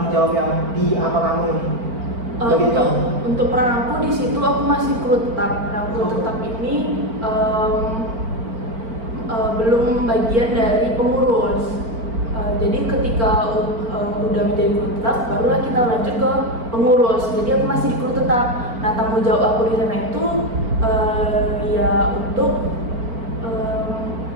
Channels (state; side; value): late; left; 4.5 ms